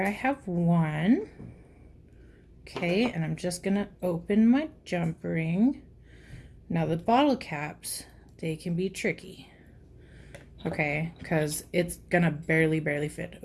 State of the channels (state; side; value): identical; both; correlation 1.00